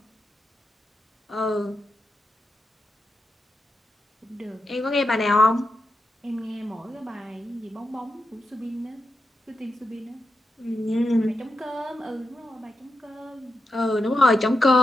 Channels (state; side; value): normal; both; correlation 0.87